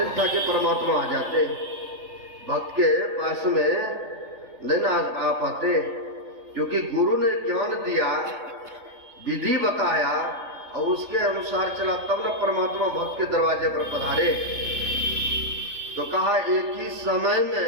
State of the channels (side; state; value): left; late; 3.4 ms